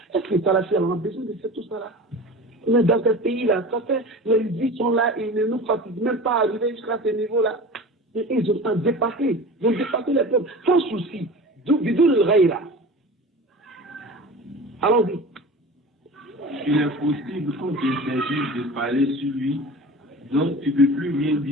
Est-ce que ça là, on a besoin de faire tout ça là? Mais dans ce pays-là, ça fait, les vies sont là, ils ne nous fatiguent même pas à arriver jusqu'à ce niveau-là. Ils ont dépassé, ils ont dépassé les peuples, sans souci. D'où le raïra. Allons-y. Il est possible qu'on t'interdise de parler sur lui, donc tu ne peux plus rien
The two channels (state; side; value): normal; both; correlation 0.35